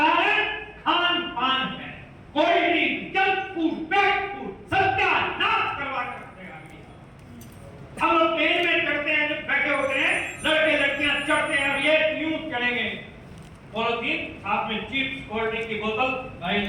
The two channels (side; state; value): both; identical; correlation 1.00